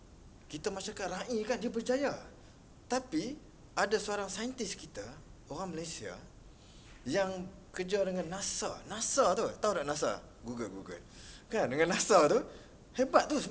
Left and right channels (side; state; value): both; identical; correlation 1.00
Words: Kita masyarakat rakyat kan, dia berjaya. Tapi ada seorang saintis kita, orang Malaysia, yang kerja dengan NASA. NASA tu, tahu tak NASA? Google. Kan, dengan NASA tu, hebat tu,